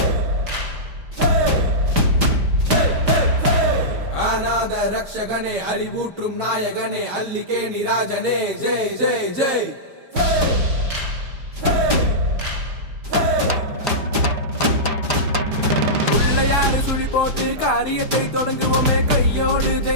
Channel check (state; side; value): late; left; 5.0 ms